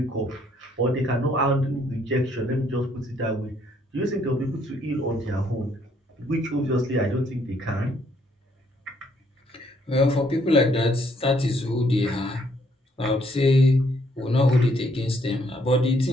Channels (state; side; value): normal; both; correlation 0.68